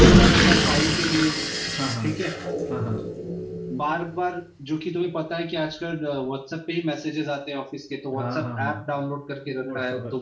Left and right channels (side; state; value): both; identical; correlation 1.00